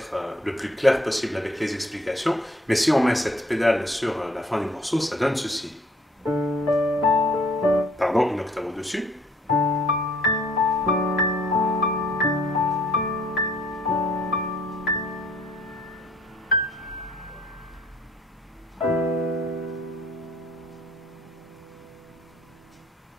le plus clair possible avec les explications, mais si on met cette pédale sur la fin du morceau, ça donne ceci. Pardon, une octave au-dessus.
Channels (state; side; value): normal; both; correlation 0.60